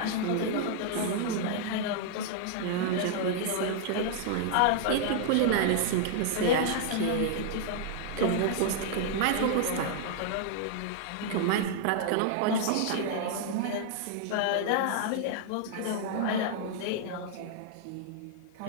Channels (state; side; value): different; both; correlation -0.01